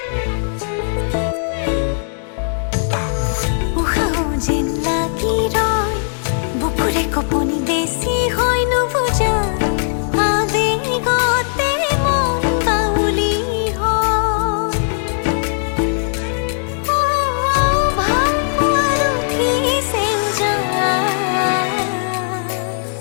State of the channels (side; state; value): right; silent; digital silence